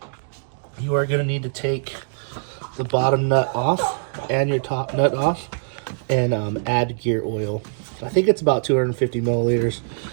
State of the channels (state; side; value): silent; left; digital silence